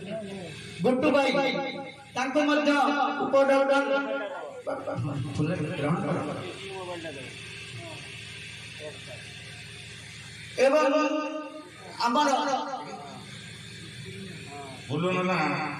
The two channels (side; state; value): both; identical; correlation 1.00